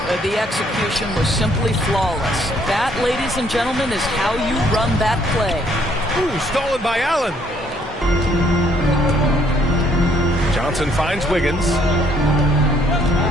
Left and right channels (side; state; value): both; normal; correlation 0.65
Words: The execution was simply flawless. That, ladies and gentlemen, is how you run that play. Ooh, stolen by Allen. Johnson finds Wiggins.